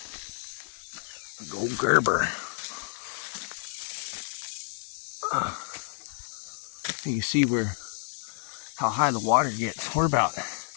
A gold Gerber. You see how high the water gets. We're about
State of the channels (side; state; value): right; silent; 58 dB below the other